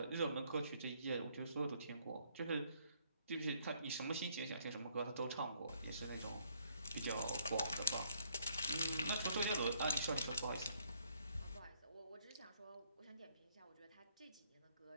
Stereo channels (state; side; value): inverted; both; correlation -0.68